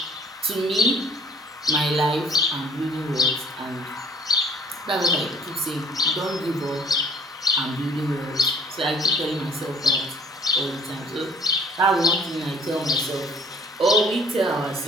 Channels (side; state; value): both; normal; correlation 0.52